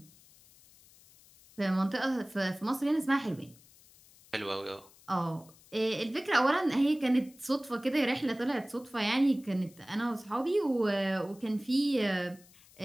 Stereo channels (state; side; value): noise; left; hiss, 26 dB below the sound